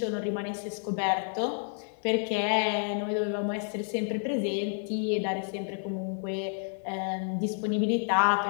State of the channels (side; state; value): right; silent; digital silence